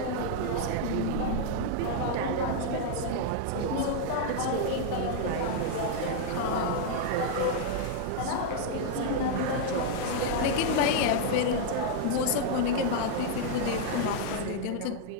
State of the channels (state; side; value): different; both; correlation -0.01